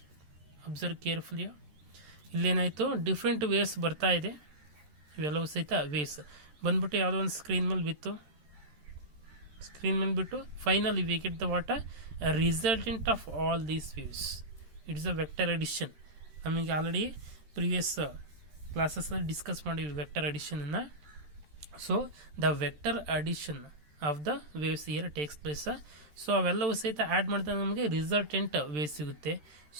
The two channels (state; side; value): late; left; 13 ms